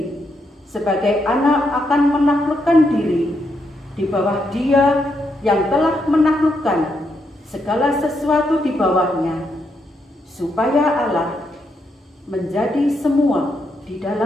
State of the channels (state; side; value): normal; both; correlation 0.80